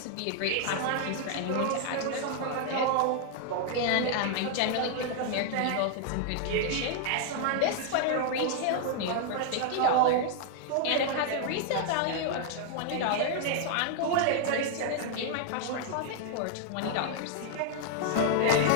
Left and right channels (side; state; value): both; different; correlation 0.00